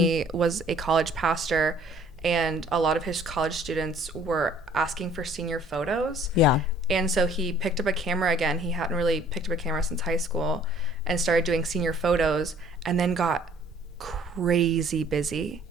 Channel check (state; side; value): normal; both; correlation 0.56